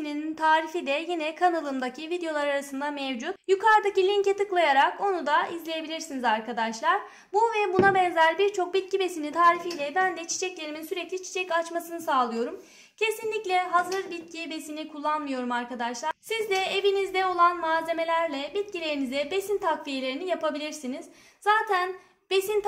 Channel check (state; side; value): identical; both; correlation 1.00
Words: tarifi de yine kanalımdaki videolar arasında mevcut. Yukarıdaki linke tıklayarak onu da izleyebilirsiniz arkadaşlar. Bu ve buna benzer birçok bitki besini tarifiyle ben de çiçeklerimin sürekli çiçek açmasını sağlıyorum. Kesinlikle hazır bitki besini kullanmıyorum arkadaşlar. Siz de evinizde olan malzemelerle bitkilerinize besin takviyelerini yapabilirsiniz. Zaten besin